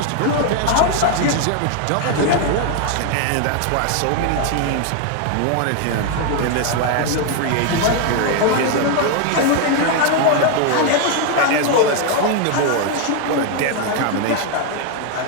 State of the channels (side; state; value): both; different; correlation 0.00